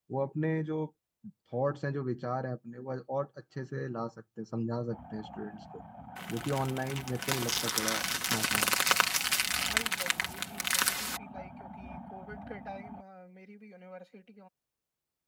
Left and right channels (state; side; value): identical; both; correlation 1.00